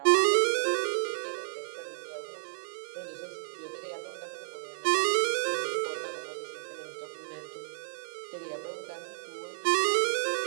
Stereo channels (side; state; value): left; silent; digital silence